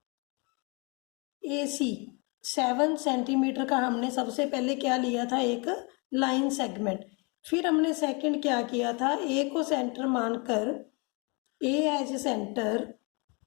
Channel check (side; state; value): right; quieter; 31.3 dB